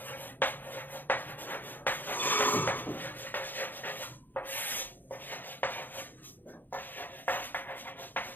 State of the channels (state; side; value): late; right; 0.089 ms